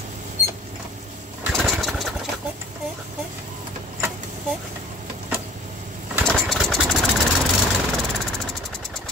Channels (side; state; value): both; normal; correlation 0.50